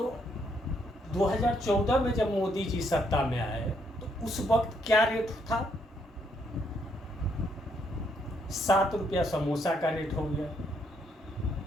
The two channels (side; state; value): both; normal; correlation 0.73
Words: 2014 में जब मोदी जी सत्ता में आए तो उस वक्त क्या रेट था? 7 रुपया समोसा का रेट हो गया।